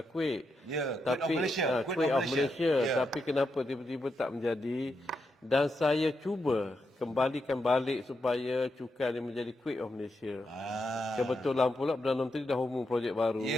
Kuwait. Kuwait of Malaysia. Tapi kenapa tiba-tiba tak menjadi. Dan saya cuba kembalikan balik supaya cukai ni menjadi Kuwait of Malaysia. Kebetulan pula Perdana Menteri dah umum projek baru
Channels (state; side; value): normal; both; correlation 0.84